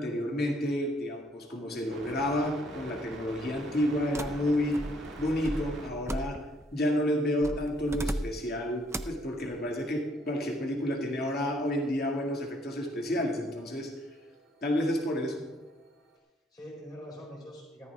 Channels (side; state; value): both; normal; correlation 0.67